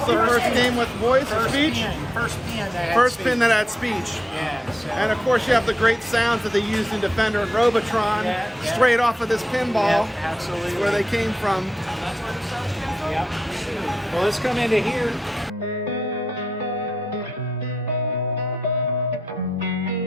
is the first game with voice or speech? First pin that had speech. Yeah. So. And of course you have the great sounds that they used in Defender and Robotron, straight off of this pinball. Yeah, absolutely. Where they came from. Yep. Well, let's come into here.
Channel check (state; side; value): normal; both; correlation 0.85